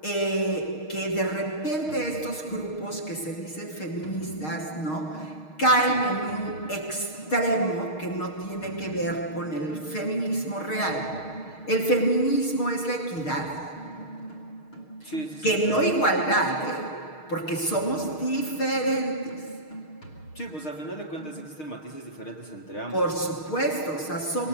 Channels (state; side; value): late; right; 6.4 ms